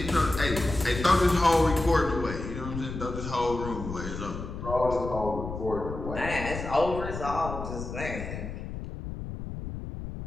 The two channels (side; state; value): left; noise; rumble, 8 dB below the sound